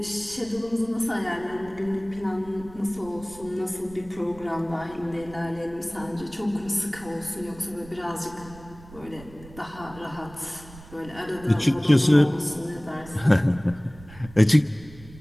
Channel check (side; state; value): right; noise; rumble, 19 dB below the sound